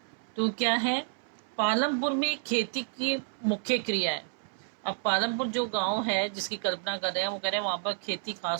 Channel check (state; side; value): silent; left; 58 dB below the other